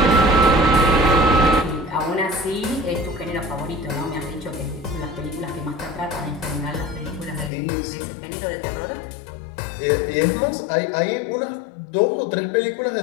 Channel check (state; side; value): drops out; right; at 7.5 s